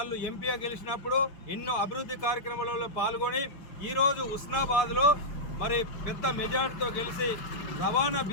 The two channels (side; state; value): right; late; 5.4 ms